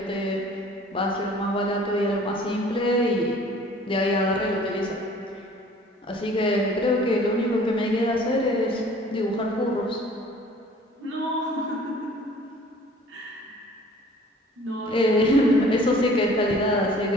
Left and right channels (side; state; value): both; normal; correlation 0.51